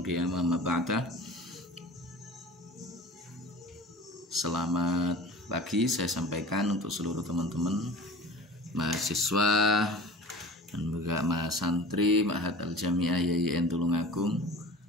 ma ba'da. Selamat pagi saya sampaikan untuk seluruh teman-teman mahasiswa dan juga mahasantri Ma'had Al-Jami'ah YIN Tulungagung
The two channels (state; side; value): normal; both; correlation 0.40